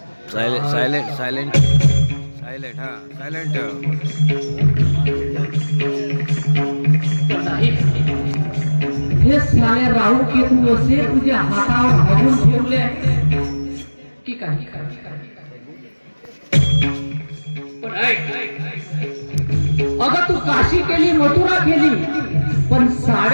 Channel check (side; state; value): both; inverted; correlation -1.00